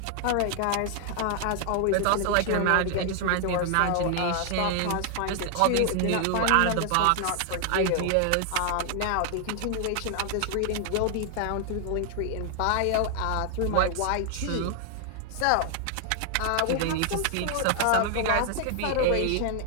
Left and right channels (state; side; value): different; both; correlation 0.00